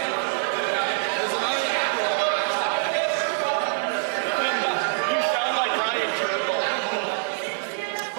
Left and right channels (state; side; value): silent; left; digital silence